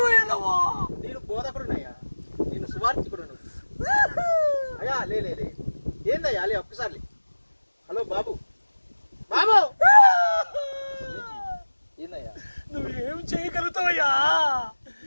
వెళ్ళవా? నేను బోధకుడునయ్యా, నేను సువార్థికుడును అయ్యా. లే లే లే ఏందయ్యా? లే ఒక్కసారి. హలో బాబు బాబు ఏందయ్యా? నువ్వేం చేయగలుగుతావయ్యా?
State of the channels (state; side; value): inverted; both; correlation -1.00